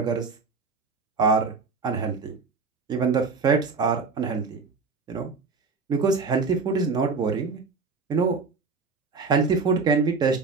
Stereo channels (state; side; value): quieter; left; 4.5 dB